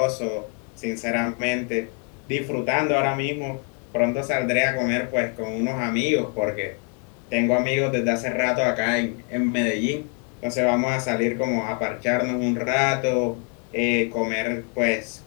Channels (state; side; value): quieter; right; 38.3 dB